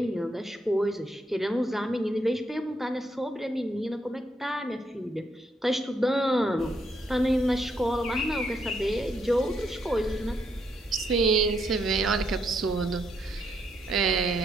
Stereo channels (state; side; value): normal; both; correlation 0.76